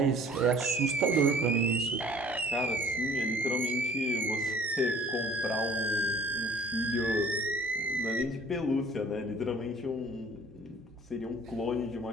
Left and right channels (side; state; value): both; normal; correlation 0.53